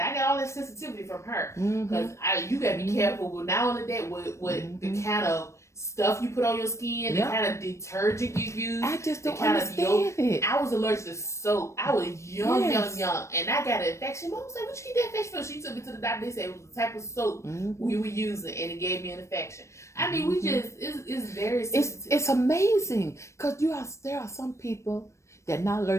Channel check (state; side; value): late; right; 0.14 ms